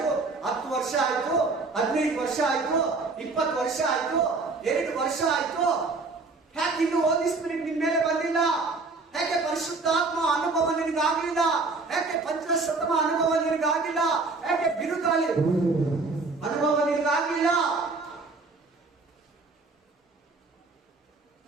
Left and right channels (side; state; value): left; quieter; 3.8 dB